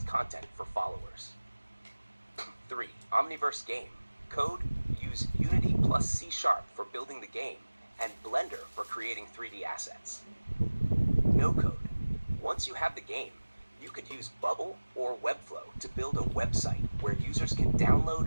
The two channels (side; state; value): both; inverted; correlation -1.00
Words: content for followers. 3. Omniverse game. Code. Use Unity plus C# for building the game, and Blender for creating 3D assets. No code. Once you have the game, you could use Bubble or Webflow to build a website where users can